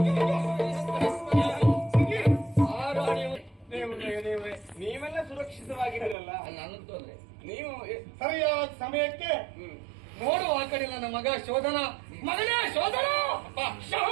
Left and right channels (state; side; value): drops out; left; at 6.2 s